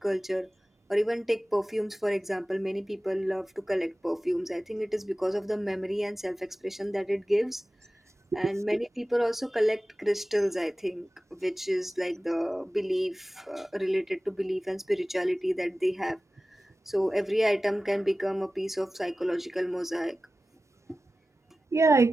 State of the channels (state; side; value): normal; both; correlation 0.96